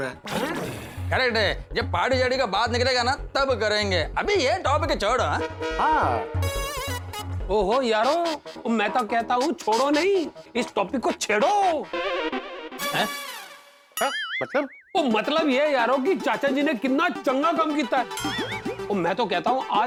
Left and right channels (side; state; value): both; identical; correlation 1.00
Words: है। करेक्ट है, जब पार्टी शार्टी का बात निकलेगा ना तब करेंगे, अभी ये टॉपिक छोड़ो। हाँ ओहो यारो, मैं तो कहता हूँ छोड़ो नहीं, इस टॉपिक को छेड़ो। हाँ, मतलब वो मतलब ये यारो कि चाचा जी ने कितना चंगा काम किया है। और मैं तो कहता हूँ